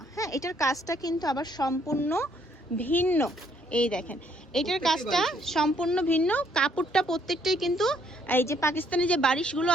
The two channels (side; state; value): both; normal; correlation 0.68